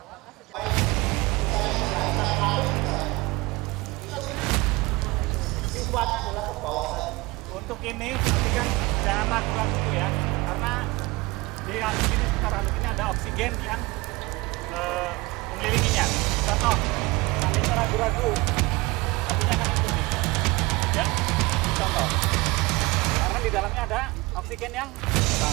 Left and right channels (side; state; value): left; quieter; 23.2 dB